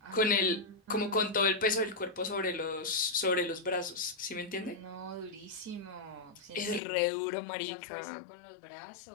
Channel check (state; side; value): drops out; right; at 6.8 s